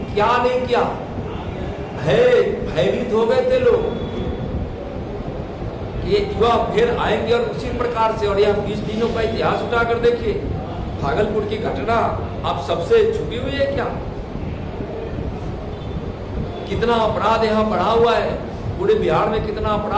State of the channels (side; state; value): both; identical; correlation 1.00